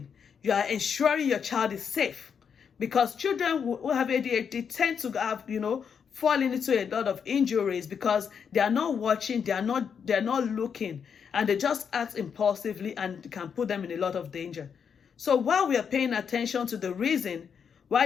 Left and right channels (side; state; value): right; quieter; 7.0 dB